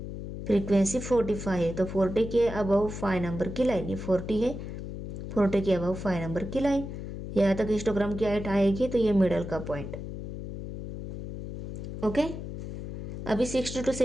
है। तो 40 के अबव 5 नंबर की लाइन, ये 40 है, 40 के अबव 5 नंबर की लाइन, यहाँ तक हिस्टोग्राम की हाइट आएगी। तो ये मिडल का पॉइंट। ओके, अभी 60 to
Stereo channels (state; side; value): noise; left; hum, 8 dB below the sound